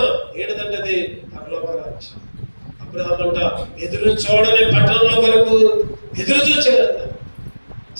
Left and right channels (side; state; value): both; inverted; correlation -1.00